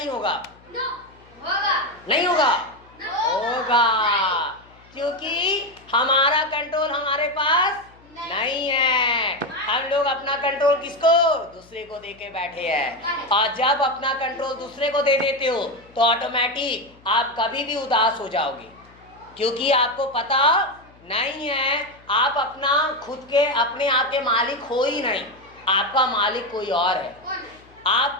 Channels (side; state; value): left; noise; hum, 27 dB below the sound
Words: होगा? होगा। नहीं होगा? होगा, क्योंकि हमारा कंट्रोल हमारे पास नहीं है। हम लोग अपना कंट्रोल किसको? दूसरे को दे के बैठे हैं, और जब अपना कंट्रोल दूसरे को दे देते हो तो ऑटोमेटिक आप कभी भी उदास हो जाओगे, क्योंकि आपको पता नहीं है आप अपना खुद के अपने आप के मालिक हो ही नहीं, आपका मालिक कोई और है।